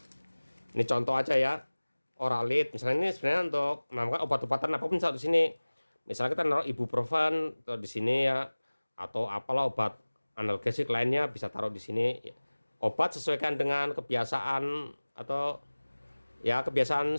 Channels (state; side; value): inverted; both; correlation -1.00